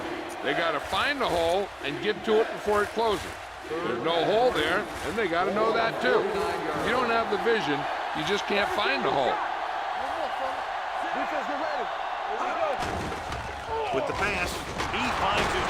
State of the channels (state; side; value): identical; both; correlation 1.00